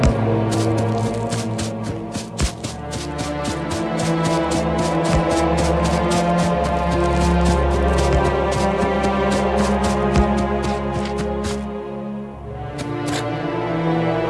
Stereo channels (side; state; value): both; identical; correlation 1.00